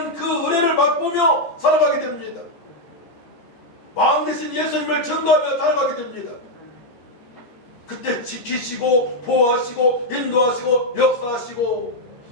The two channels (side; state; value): right; late; 12 ms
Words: 그 은혜를 맛보며 살아가게 됩니다. 왕 대신 예수님을 증거하며 살아가게 됩니다. 그때 지키시고 보호하시고 인도하시고 역사하시고